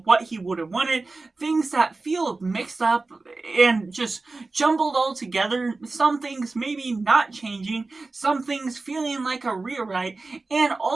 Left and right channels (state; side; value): quieter; left; 3.6 dB